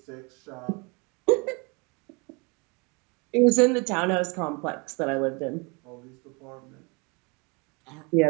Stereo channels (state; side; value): quieter; left; 30.3 dB